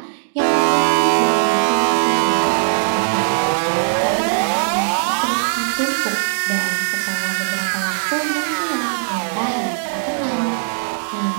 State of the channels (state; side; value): silent; left; digital silence